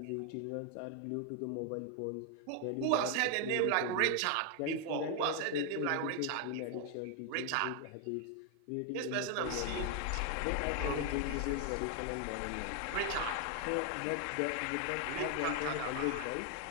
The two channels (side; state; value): both; different; correlation 0.00